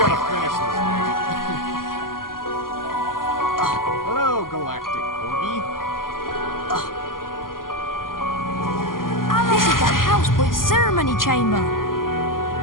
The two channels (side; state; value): right; late; 0.91 ms